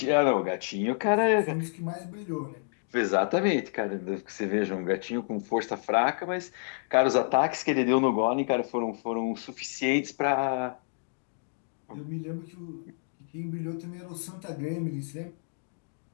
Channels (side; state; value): right; silent; digital silence